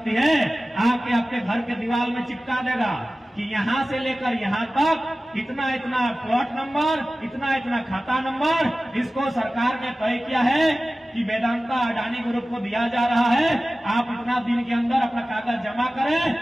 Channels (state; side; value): normal; both; correlation 0.96